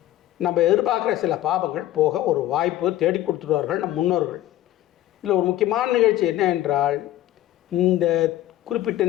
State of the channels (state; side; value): quieter; right; 14.0 dB